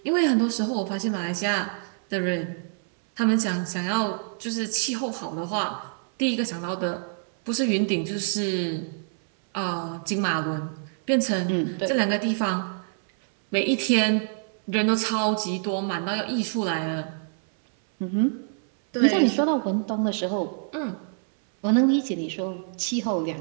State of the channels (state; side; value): silent; left; 61 dB below the other